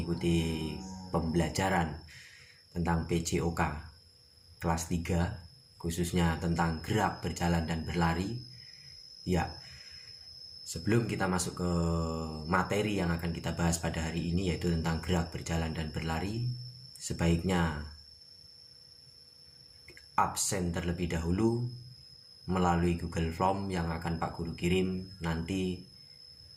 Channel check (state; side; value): identical; both; correlation 1.00